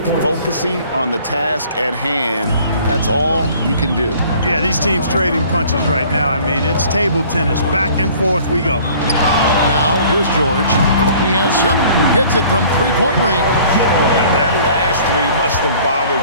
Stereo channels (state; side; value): inverted; both; correlation -0.52